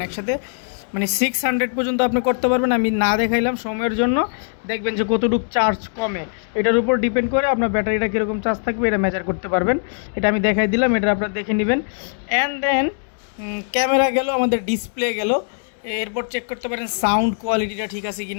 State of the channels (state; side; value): silent; right; digital silence